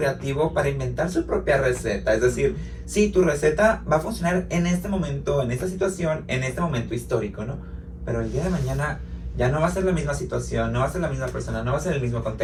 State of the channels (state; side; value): identical; both; correlation 1.00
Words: para inventar su propia receta. Es decir, sí, tu receta va a funcionar en este momento, en esta situación, en este momento histórico, ¿no? Pero el día de mañana ya no va a ser la misma situación, no va a ser la misma persona, no va a ser el mismo